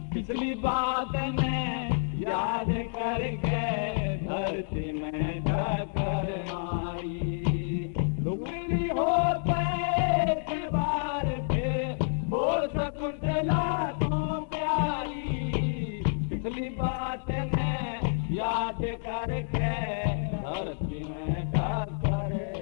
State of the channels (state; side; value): silent; right; digital silence